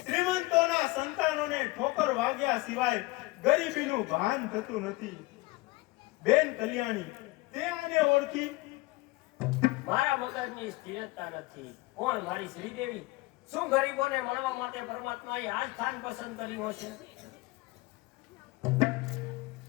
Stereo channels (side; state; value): right; quieter; 21.7 dB